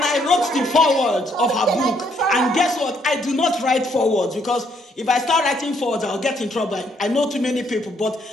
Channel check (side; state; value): both; normal; correlation 0.70